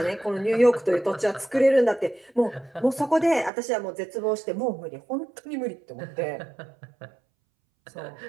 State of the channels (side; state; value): left; drops out; at 3.5 s